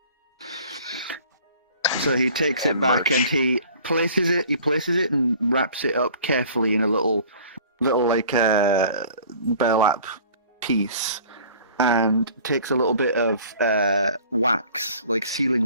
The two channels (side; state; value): both; inverted; correlation -0.48